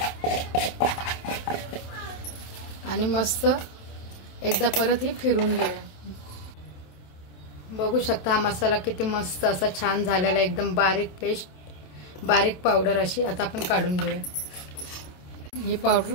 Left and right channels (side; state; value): right; late; 27 ms